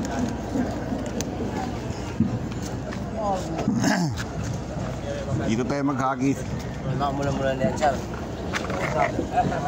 Dito tayo maghagis. Mula-mula na yan, sir.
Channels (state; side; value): identical; both; correlation 1.00